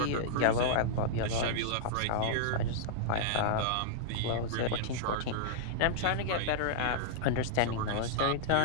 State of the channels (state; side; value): different; both; correlation -0.02